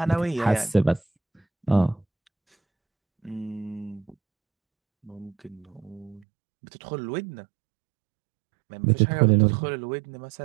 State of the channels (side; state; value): left; drops out; at 6.2 s